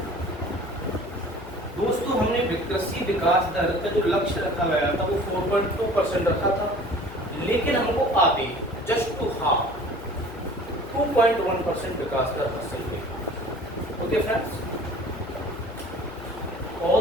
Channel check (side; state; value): left; noise; hum, 14 dB below the sound